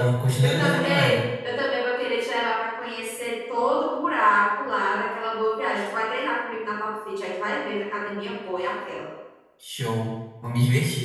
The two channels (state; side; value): identical; both; correlation 1.00